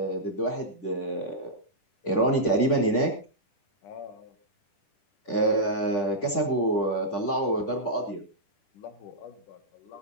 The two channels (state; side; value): late; right; 10 ms